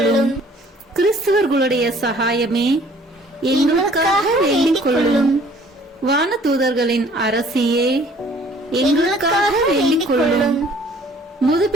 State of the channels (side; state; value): both; normal; correlation 0.55